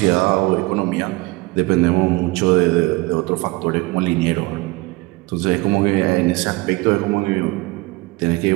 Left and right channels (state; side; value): quieter; left; 22.8 dB